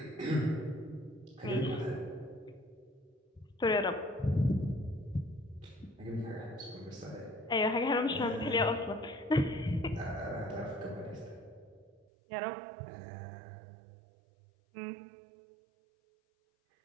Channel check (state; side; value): drops out; left; at 12.1 s